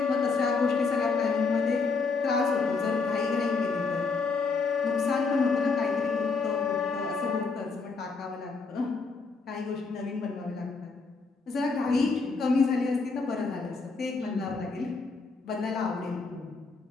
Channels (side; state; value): right; quieter; 4.4 dB